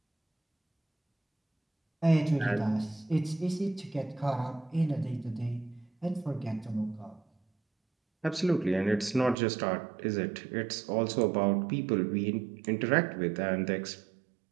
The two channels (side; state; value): left; drops out; at 9.3 s